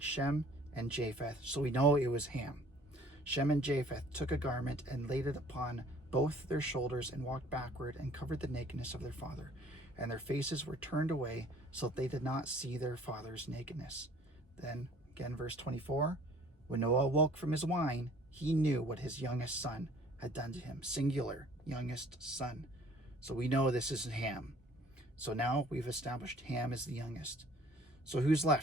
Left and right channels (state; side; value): normal; both; correlation 0.54